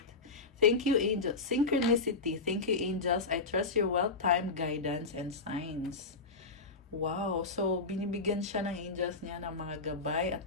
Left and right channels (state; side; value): quieter; right; 3.9 dB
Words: Thank you, angels. Synchronicity. Thank you, angels. I trust your well-timed guidance and signs. Wow. So, binibigyan siya ng angels niya ng mga gabay at